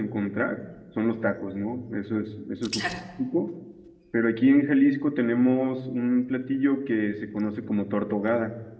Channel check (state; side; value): identical; both; correlation 1.00